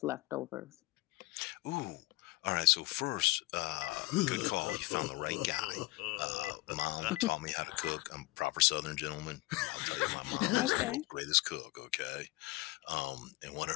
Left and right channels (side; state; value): right; quieter; 20.8 dB